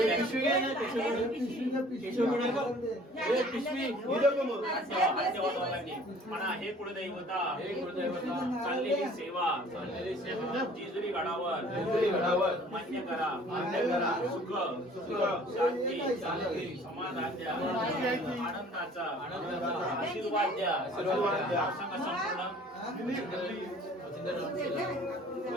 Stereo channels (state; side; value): normal; both; correlation 0.52